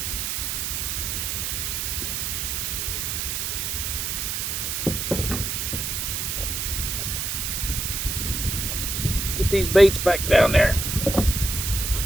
Get these baits back down there.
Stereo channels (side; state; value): right; noise; hiss, 1 dB below the sound